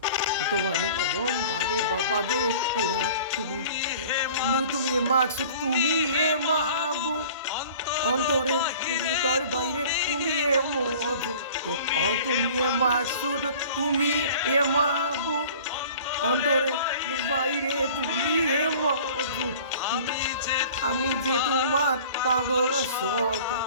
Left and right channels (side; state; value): both; inverted; correlation -0.45